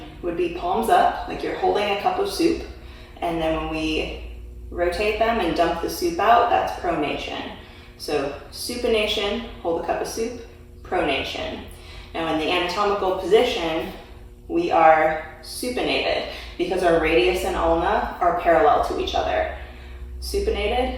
would be palms up, like you're holding a cup of soup, and then when we rotate them and dump the soup out, that's pronation. So supination, hold a cup of soup, pronation. Now in the anatomical position, we are supinated because our radius and ulna are parallel to each other. Supinated,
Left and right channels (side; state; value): both; identical; correlation 1.00